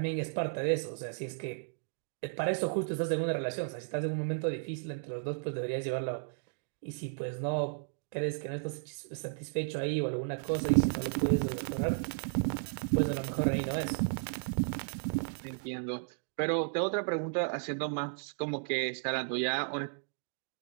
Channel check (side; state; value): left; silent; digital silence